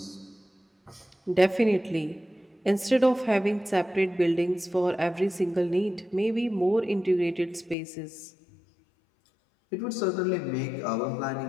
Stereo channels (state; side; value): drops out; right; at 7.8 s